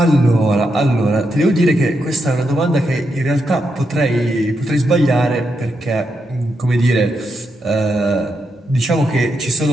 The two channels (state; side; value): normal; both; correlation 0.83